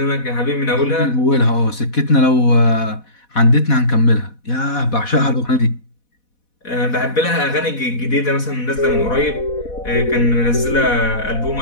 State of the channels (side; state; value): right; late; 4.1 ms